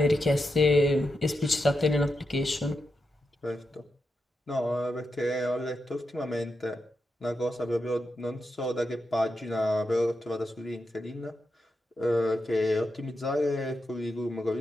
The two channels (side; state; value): both; normal; correlation 0.87